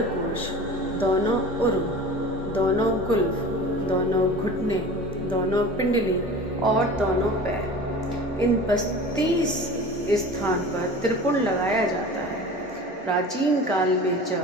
दोनों उर्व, दोनों कुल्फ, दोनों घुटने, दोनों पिंडली और दोनों पैर। इन 32 स्थान पर त्रिपुण लगाया जाता है। प्राचीन काल में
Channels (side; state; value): both; normal; correlation 0.38